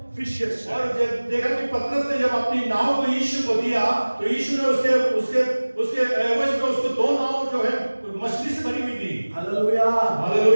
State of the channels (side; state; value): both; inverted; correlation -1.00